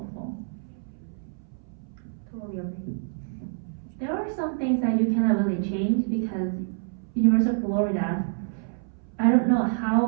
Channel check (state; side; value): silent; left; 60 dB below the other